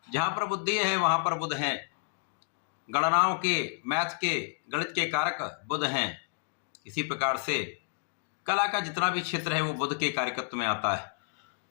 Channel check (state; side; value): silent; right; digital silence